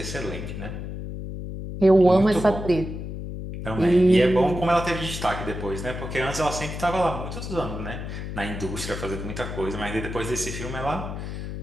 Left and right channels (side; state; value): left; noise; hum, 7 dB below the sound